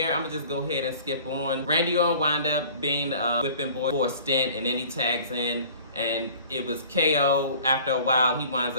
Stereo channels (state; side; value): inverted; both; correlation -0.48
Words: I'm going to just go ahead and skip on. Randy Orton wound up being a whipping boy for a stint, and then he tags in. And it was KO. After a while, he winds